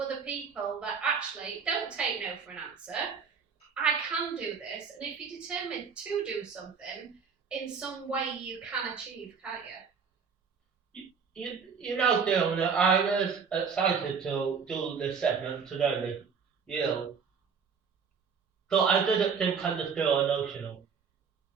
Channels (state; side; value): quieter; left; 6.0 dB